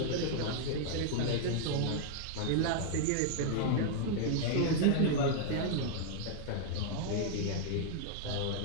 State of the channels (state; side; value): different; both; correlation 0.00